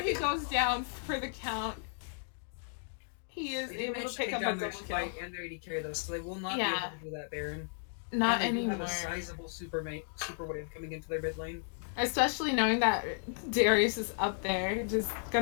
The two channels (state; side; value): silent; right; digital silence